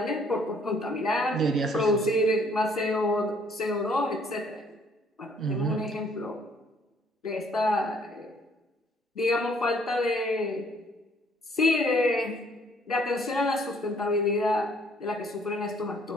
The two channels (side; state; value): both; normal; correlation 0.63